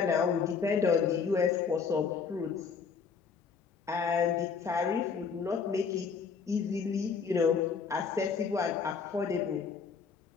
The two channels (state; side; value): quieter; right; 5.7 dB